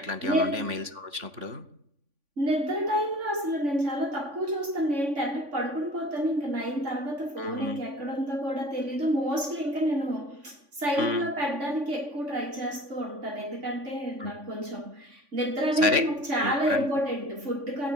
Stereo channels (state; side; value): late; left; 3.5 ms